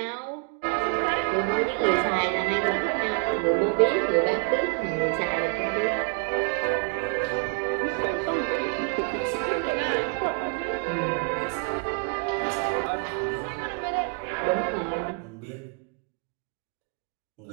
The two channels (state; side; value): quieter; left; 39.5 dB